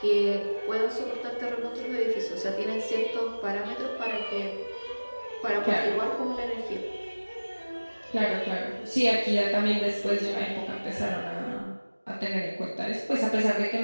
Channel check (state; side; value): inverted; both; correlation -1.00